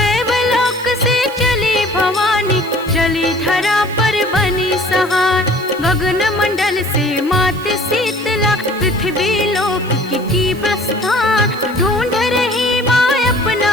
से चली भवानी, चली धरा पर बनी सहार। गगन मंडल से मात शीतला, पृथ्वी लोक की प्रस्थान। ढूंढ रही माँ अपना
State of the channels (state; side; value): noise; right; hiss, 21 dB below the sound